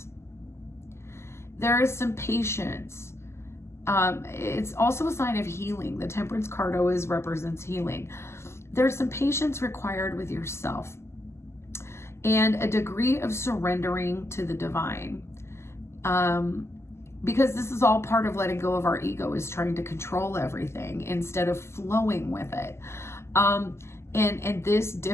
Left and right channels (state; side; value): late; right; 0.13 ms